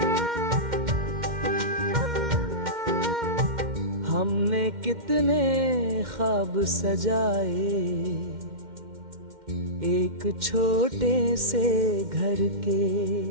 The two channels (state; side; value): late; left; 2.1 ms